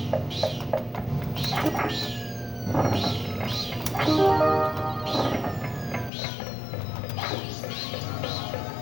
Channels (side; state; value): right; drops out; at 6.1 s